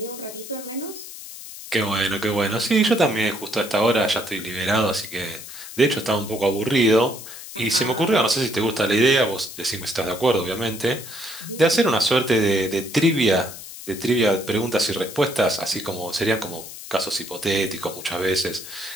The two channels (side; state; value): left; noise; hiss, 13 dB below the sound